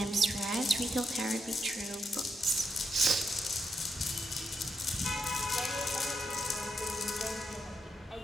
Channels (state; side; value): normal; both; correlation 0.82